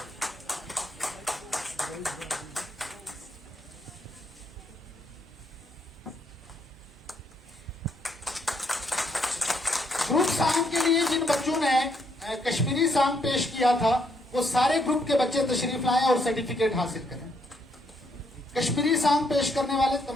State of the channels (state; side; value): normal; both; correlation 0.73